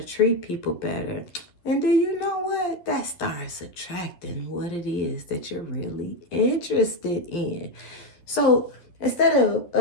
treat people better. And do you know what? That starts attracting what it is that you're really interested in. So instead of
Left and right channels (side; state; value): right; late; 11 ms